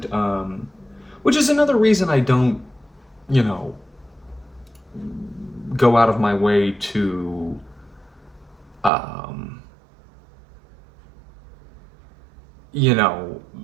Which is another reason I don't, go out of my way to,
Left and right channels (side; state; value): left; drops out; at 8.9 s